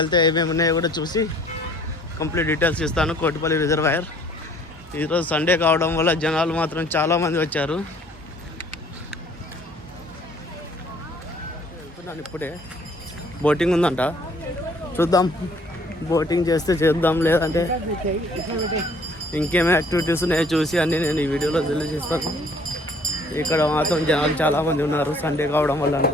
ఏమేమి ఉన్నాయో కూడా చూసి కంప్లీట్ డీటెయిల్స్ ఇస్తాను. కోటిపల్లి రిజర్వాయర్ ఈరోజు సండే కావడం వల్ల జనాలు మాత్రం చాలామంది వచ్చారు. వెళ్తున్నాను ఇప్పుడే. బోటింగ్ ఉందంట, చూద్దాం. బోటింగ్ చేస్తే చేద్దాం, లేదంటే ఇంకేమైనా యాక్టివిటీస్ ఉన్నాయో చూసి అన్నీ నేను ఈ వీడియోలో తెలియజేస్తాను. ఇక్కడ మాత్రం జనాలు చాలామంది ఉన్నారు, సండే కావడం వల్ల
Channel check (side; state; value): both; normal; correlation 0.58